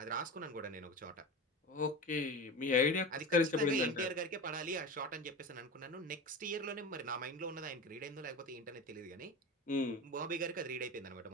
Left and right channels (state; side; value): normal; both; correlation 0.28